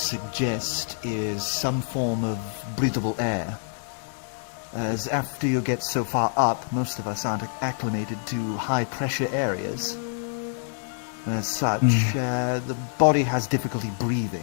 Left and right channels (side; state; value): right; silent; digital silence